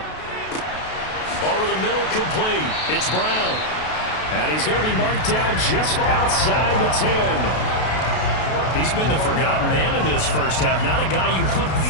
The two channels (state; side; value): late; right; 32 ms